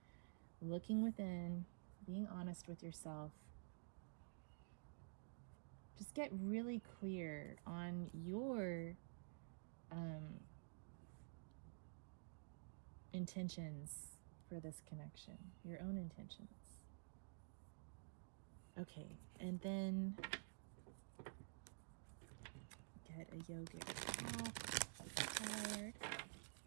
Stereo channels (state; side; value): silent; left; digital silence